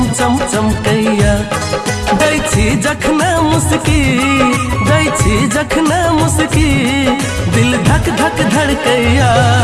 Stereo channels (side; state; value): both; identical; correlation 1.00